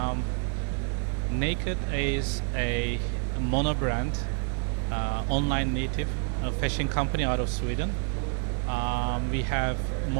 Naked is a mono brand, online native fashion company out of Sweden. We have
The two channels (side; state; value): left; quieter; 39.0 dB